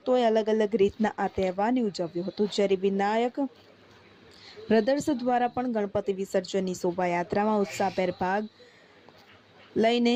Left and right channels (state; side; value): identical; both; correlation 1.00